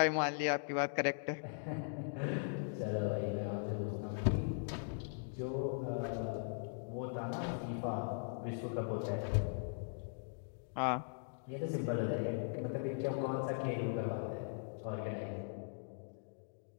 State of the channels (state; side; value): silent; right; digital silence